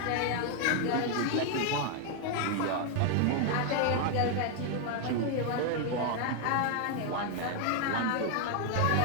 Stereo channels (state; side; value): different; both; correlation 0.00